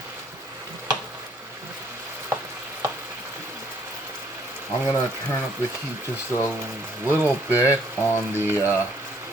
I'm gonna turn up the heat just a little bit on the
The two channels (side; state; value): both; normal; correlation 0.64